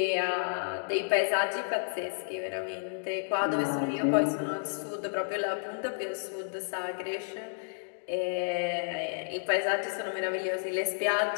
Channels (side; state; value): right; silent; digital silence